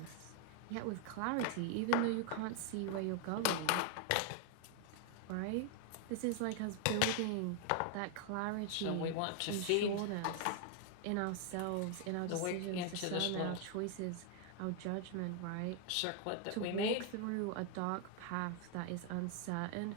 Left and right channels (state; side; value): different; both; correlation 0.00